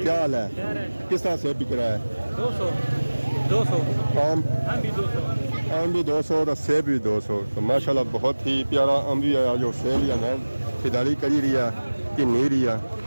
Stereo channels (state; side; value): inverted; both; correlation -1.00